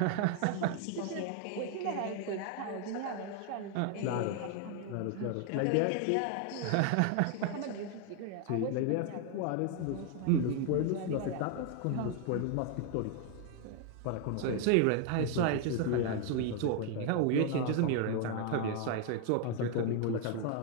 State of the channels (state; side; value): different; both; correlation 0.00